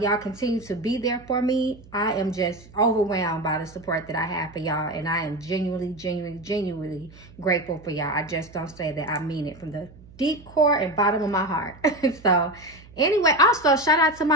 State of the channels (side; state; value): right; noise; hum, 22 dB below the sound